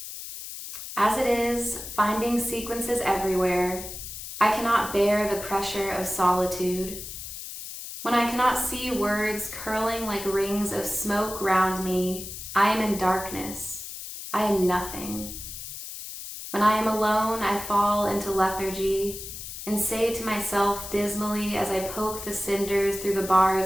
As it is, finding sequences everywhere, I cannot bear the pressure of solitude. When I cannot see words curling like rings of smoke round me, I am in darkness. I am nothing. When I am alone, I fall into lethargy and say to myself dismally as I poke the cinders through the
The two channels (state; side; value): noise; left; hiss, 10 dB below the sound